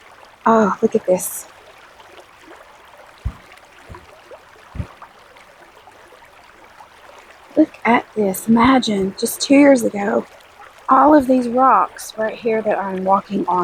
oh, look at this. Look at this. Imagine just 2 years ago, all of these rocks right here that I'm walking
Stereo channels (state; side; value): identical; both; correlation 1.00